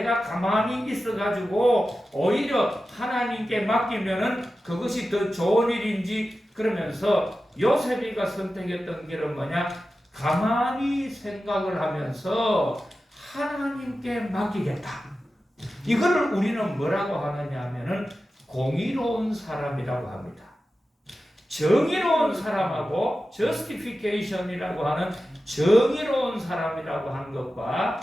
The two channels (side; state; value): both; normal; correlation 0.93